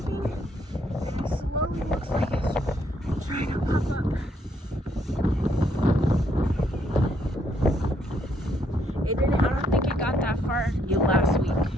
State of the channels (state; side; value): normal; both; correlation 0.71